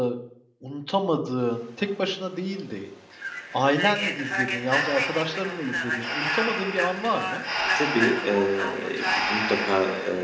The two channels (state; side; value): identical; both; correlation 1.00